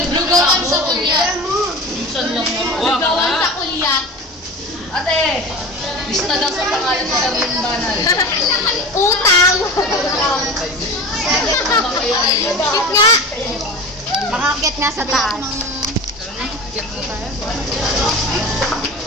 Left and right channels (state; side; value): normal; both; correlation 0.33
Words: Lugawan sa kuya. Lugawan sa kulyat. Ate, lista daw sa pangalan sa Darling Banal. Utang! Cute nga! Makakit nga sa taas.